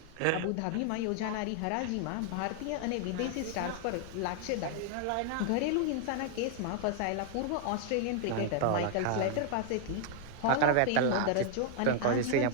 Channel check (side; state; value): both; different; correlation 0.00